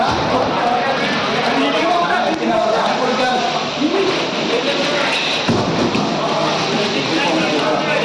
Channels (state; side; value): identical; both; correlation 1.00